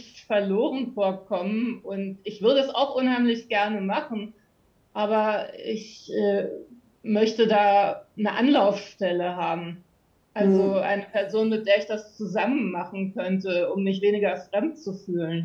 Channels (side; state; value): both; identical; correlation 1.00